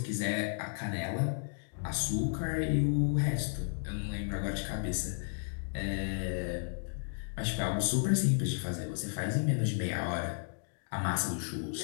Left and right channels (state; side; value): silent; right; digital silence